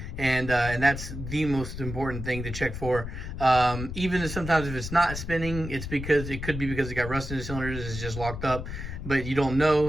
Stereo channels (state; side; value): noise; left; rumble, 7 dB below the sound